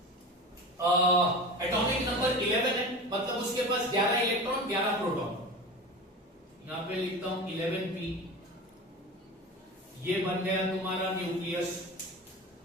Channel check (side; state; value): both; normal; correlation 0.31